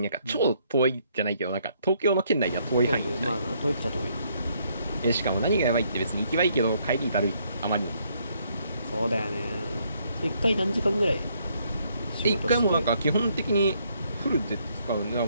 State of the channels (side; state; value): both; inverted; correlation -0.70